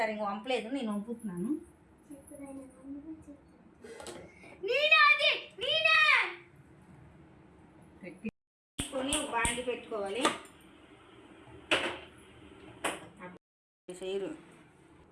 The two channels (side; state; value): both; identical; correlation 1.00